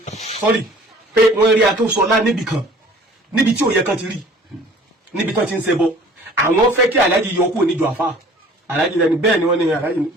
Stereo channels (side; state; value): both; normal; correlation 0.50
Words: sọ́rí pé wọ́n rí akẹ́sọ̀lá níbì kan níbi tí òye kan ti rí níbi tán ti ń ṣẹbọ àwọn fẹ́ kí alájì yọ kúrò níjọ àfà alájì lẹni bẹ́ẹ̀ ni wọ́n ní alájì